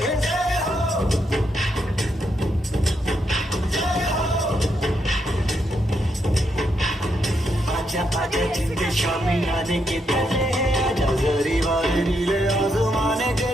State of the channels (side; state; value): both; normal; correlation 0.79